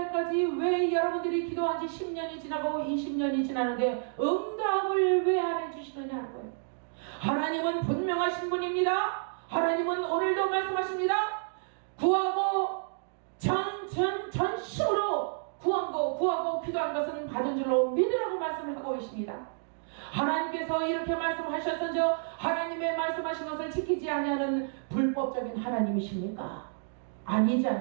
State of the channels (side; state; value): left; silent; digital silence